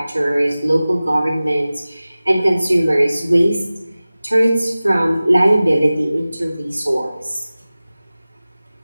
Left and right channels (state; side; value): inverted; both; correlation -0.97